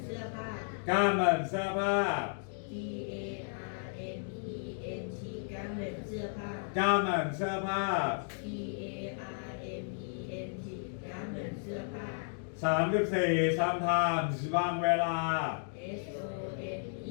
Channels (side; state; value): right; silent; digital silence